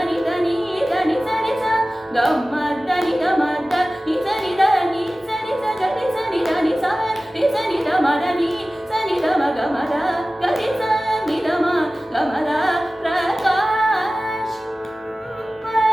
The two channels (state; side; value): normal; both; correlation 0.97